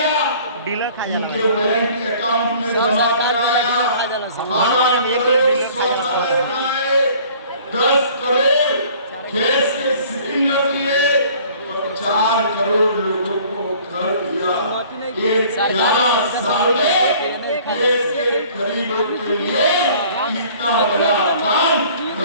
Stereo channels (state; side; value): inverted; both; correlation -0.52